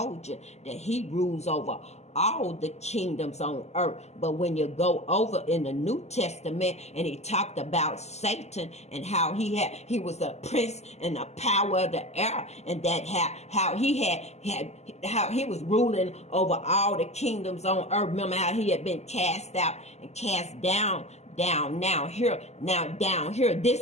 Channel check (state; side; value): late; right; 0.32 ms